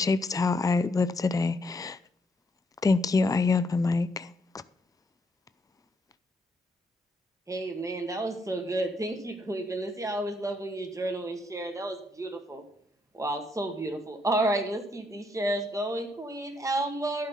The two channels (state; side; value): normal; both; correlation 0.74